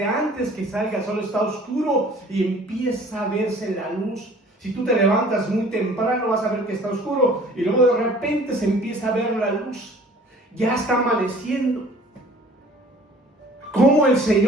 antes que salga el sol está oscuro y empieza a verse la luz. Si tú te levantas muy temprano vas a ver que está oscuro y luego de repente se empieza a ver la luz. Ya está amaneciendo. Como el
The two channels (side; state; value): both; normal; correlation 0.50